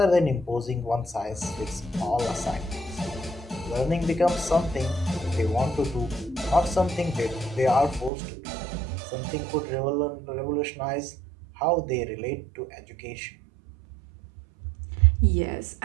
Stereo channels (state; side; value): drops out; left; at 8.1 s